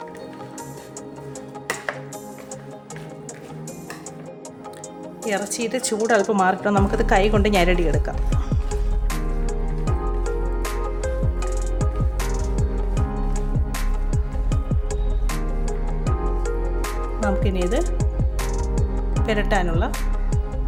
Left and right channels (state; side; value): identical; both; correlation 1.00